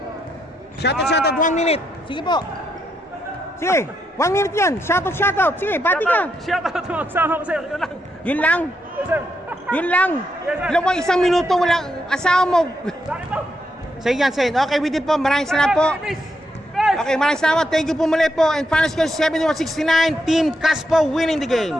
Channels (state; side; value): normal; both; correlation 0.80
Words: Shoutout, 1 minute. Sige po. Sige, 1 minute yan. Shoutout. Sige, bati ka. Shoutout mo, kasama ko, sir. Yun lang. Yun lang? Yes, sir. Yun lang? Yes, sir. Alam mo, 1 minuto, walang asawa mo. Bakit po? Sige yan, sir. Okay, we did po. Maraming salamat po. Okay, maraming salamat. Thank you po muli po. And final score 71-69. Team Caspo winning the game.